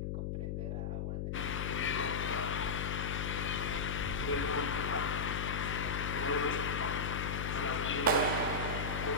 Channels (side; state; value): left; noise; hum, 2 dB below the sound